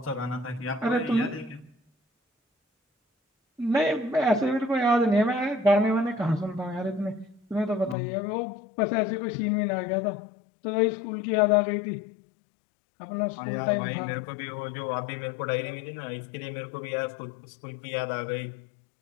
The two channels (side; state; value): right; drops out; at 8.0 s